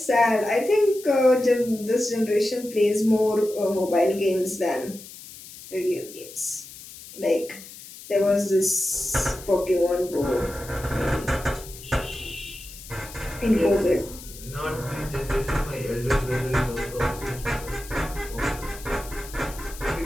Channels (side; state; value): left; noise; hiss, 16 dB below the sound